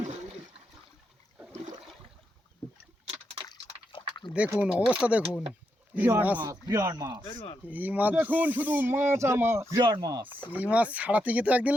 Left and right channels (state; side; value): normal; both; correlation 0.83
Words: দেখুন অবস্থা দেখুন, এই মাছ দেখুন শুধু মাছ আর মাছ, বিরাট মাছ। এই মাছ ছাড়াতে গিয়ে তো একদিন